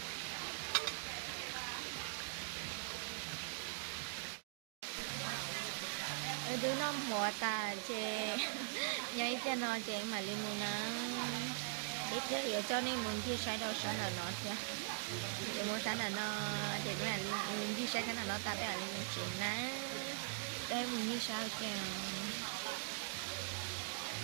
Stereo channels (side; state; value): left; silent; digital silence